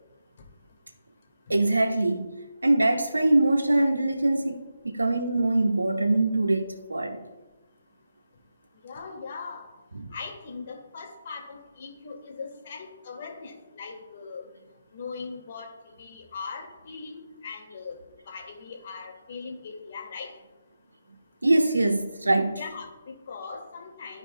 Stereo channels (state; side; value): inverted; both; correlation -0.93